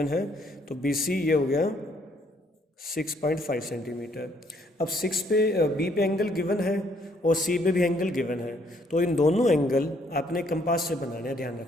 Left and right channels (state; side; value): normal; both; correlation 0.67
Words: है तो बी सी ये हो गया 6.5 सेंटीमीटर. अब 6 पे बी पे एंगल गिवन है और सी पे भी एंगल गिवन है, तो इन दोनों एंगल आपने कंपास से बनाने हैं. ध्यान